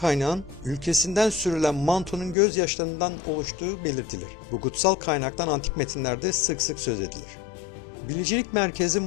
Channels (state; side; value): drops out; right; at 2.4 s